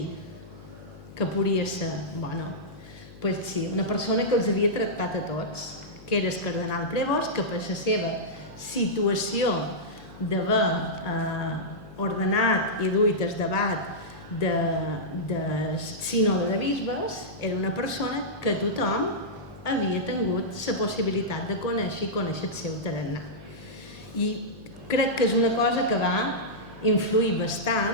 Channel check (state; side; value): noise; left; hum, 18 dB below the sound